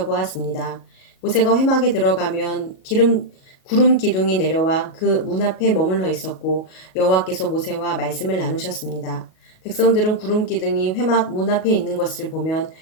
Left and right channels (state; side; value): late; right; 38 ms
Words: 모세가 회막에 들어가면 구름 기둥이 내려와 그 문 앞에 머물러 있었고 여호와께서 모세와 말씀을 나누셨습니다. 백성들은 구름 기둥이 회막 문 앞에 있는 것을 보면